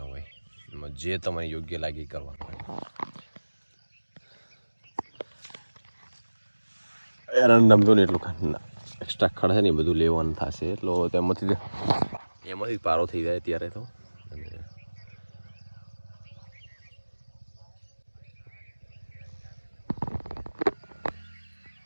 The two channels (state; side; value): inverted; both; correlation -1.00